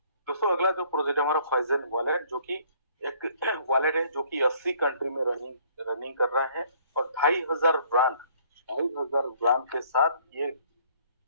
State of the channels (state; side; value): inverted; both; correlation -0.60